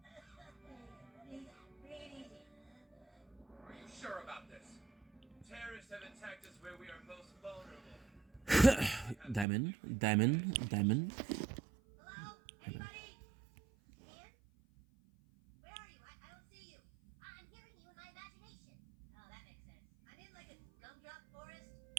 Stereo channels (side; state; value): left; drops out; at 9.5 s